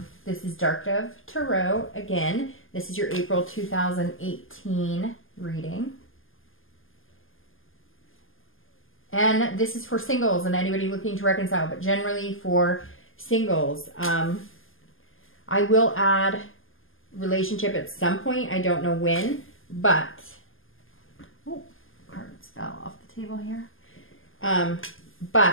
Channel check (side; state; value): right; late; 0.59 ms